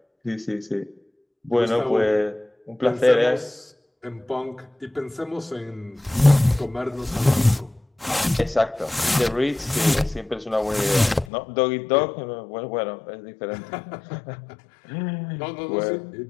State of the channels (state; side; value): drops out; right; at 11.2 s